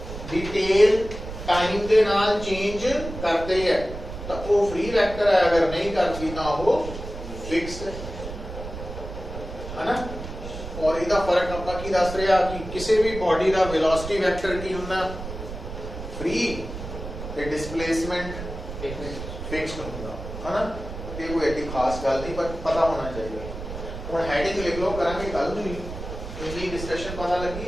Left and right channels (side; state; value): right; noise; rumble, 9 dB below the sound